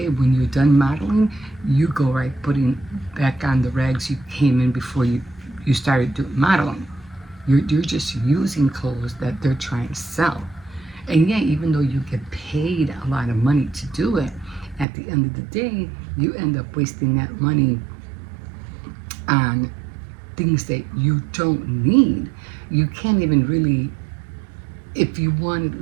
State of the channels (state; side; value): drops out; left; at 14.9 s